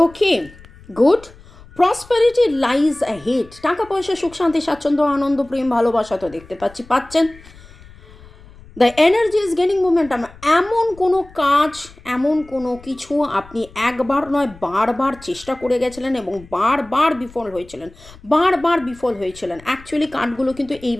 ওকে, গুড। প্রসপারিটি লাইজ অ্যাহেড, টাকা পয়সা, সুখ শান্তি, স্বাচ্ছন্দ্য, আনন্দ, প্রেম, ভালোবাসা তো দেখতে পাচ্ছেন। The energy is gaining momentum, এমন কোনো কাজ, এমন কোনো কিছু আপনি একবার নয় বারবার চেষ্টা করে গেছিলেন এবং বারবার বিফল হয়েছিলেন। অ্যাকচুয়ালি কার্ডগুলো কিন্তু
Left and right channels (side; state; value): left; noise; rumble, 22 dB below the sound